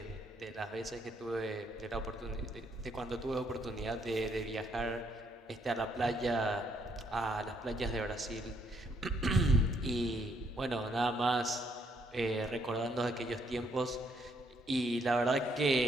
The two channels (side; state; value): both; normal; correlation 0.71